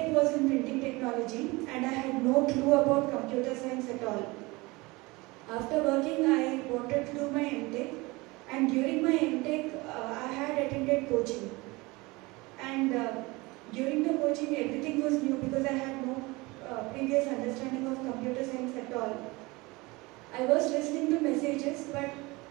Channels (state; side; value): quieter; left; 23.4 dB